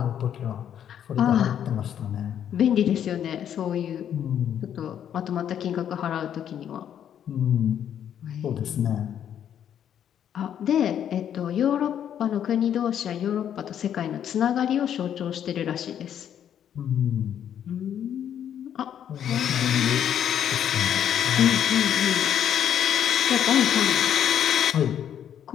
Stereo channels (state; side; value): quieter; right; 9.5 dB